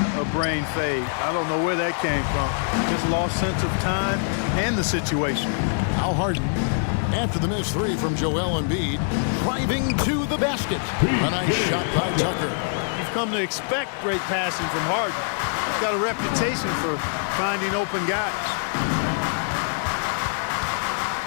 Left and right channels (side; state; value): right; silent; digital silence